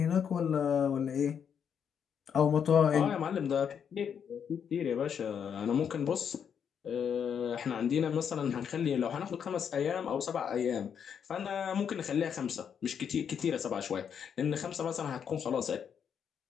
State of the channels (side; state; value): right; quieter; 7.7 dB